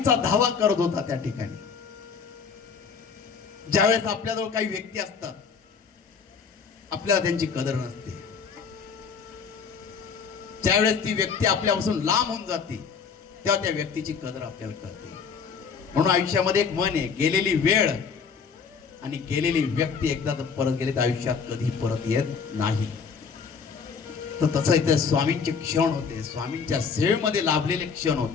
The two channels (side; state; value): right; quieter; 5.9 dB